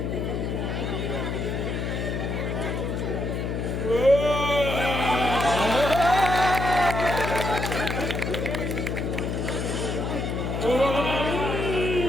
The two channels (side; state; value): left; noise; hum, 2 dB below the sound